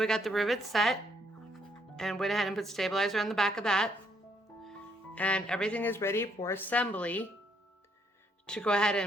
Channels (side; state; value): both; normal; correlation 0.70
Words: got the rivet set, and went ahead and put stabilizer on the back of that. And everything is ready for assembly to go ahead